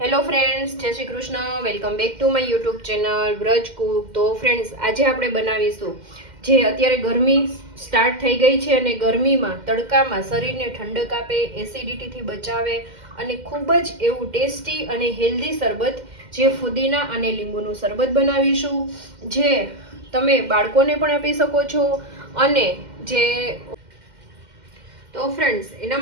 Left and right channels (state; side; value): late; left; 2.1 ms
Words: Hello friends, જય Shri Krishna. Welcome back to my YouTube channel Vraj Cook. તો friends, આજે આપણે બનાવીશું જે અત્યારે ગરમી સ્ટાર્ટ થઈ ગઈ છે અને ગરમીમાં તડકામાં શરીરને ઠંડક આપે, એસિડિટીથી બચાવે અને ખૂબ જ એવું ટેસ્ટી અને હેલ્ધી શરબત જે ફુદીના અને લીંબુનું શરબત બનાવીશું, જે તમે બાળકોને પણ આપી શકો છો. અને જે તો ફ્રેન્ડ્સ, એના